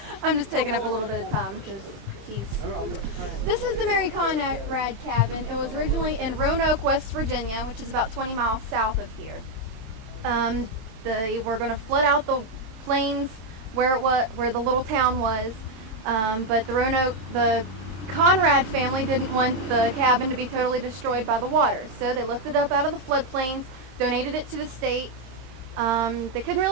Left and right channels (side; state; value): left; late; 26 ms